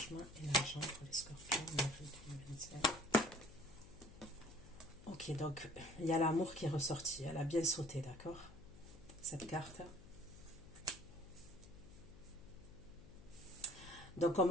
et l'argent pour les scorpions en avril 2025. Ok, donc il y a l'amour qui est ressorti. Elle a bien sauté, d'accord? Cette carte. Donc on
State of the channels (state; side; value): noise; left; hum, 18 dB below the sound